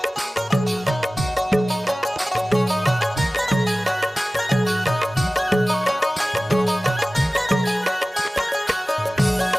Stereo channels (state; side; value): normal; both; correlation 0.97